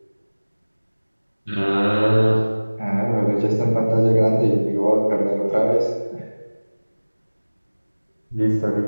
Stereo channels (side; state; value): both; inverted; correlation -1.00